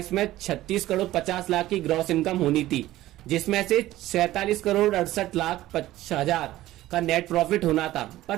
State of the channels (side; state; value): left; quieter; 15.5 dB